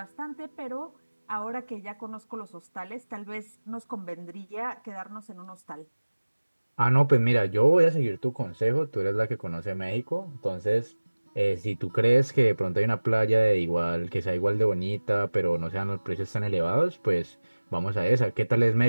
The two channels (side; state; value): both; inverted; correlation -1.00